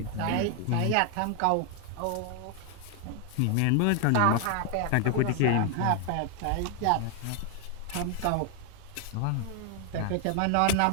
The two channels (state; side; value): different; both; correlation 0.01